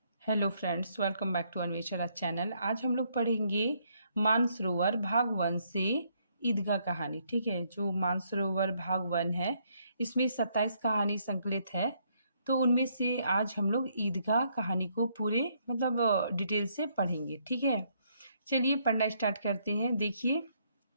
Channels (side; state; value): both; inverted; correlation -0.71